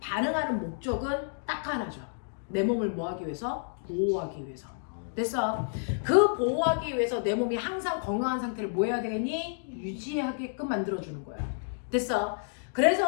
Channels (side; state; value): right; silent; digital silence